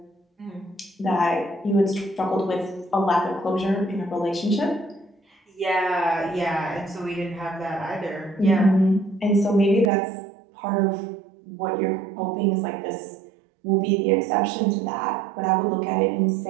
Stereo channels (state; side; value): drops out; left; at 9.9 s